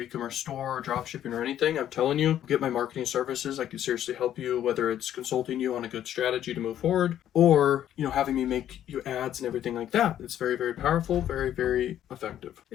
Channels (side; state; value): right; quieter; 11.1 dB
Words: store or drop shipping or anything, I'm telling you, get my marketing services. I can seriously help you, whether it's consulting you on a good strategy to move forward, or having me make you ads and everything like that. It's very, very powerful, very, very effective.